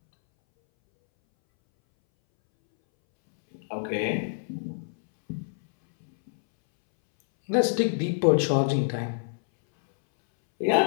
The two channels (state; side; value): silent; right; 61 dB below the other